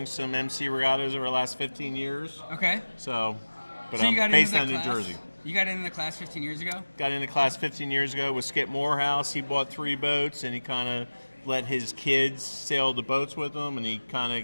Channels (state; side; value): inverted; both; correlation -1.00